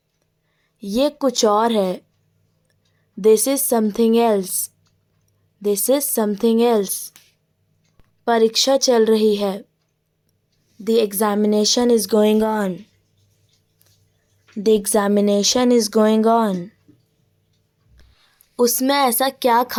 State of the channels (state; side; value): identical; both; correlation 1.00